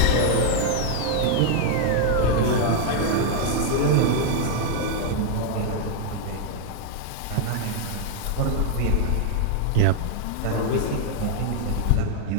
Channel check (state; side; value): different; both; correlation 0.00